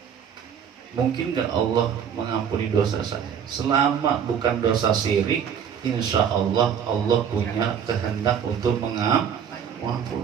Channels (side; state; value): left; quieter; 8.0 dB